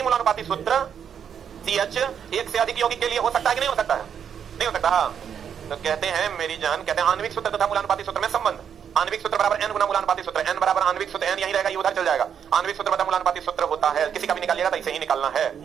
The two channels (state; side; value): quieter; left; 8.0 dB